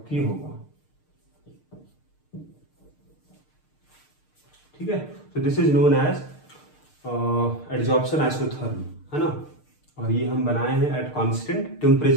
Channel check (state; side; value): late; right; 6.6 ms